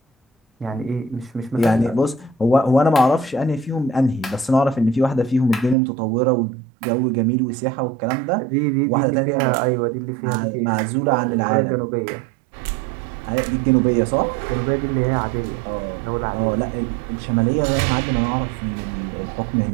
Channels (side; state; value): left; drops out; at 5.8 s